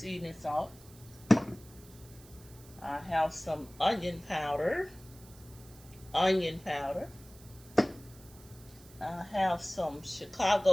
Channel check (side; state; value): right; noise; hiss, 22 dB below the sound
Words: salt. I have some onion powder. I have some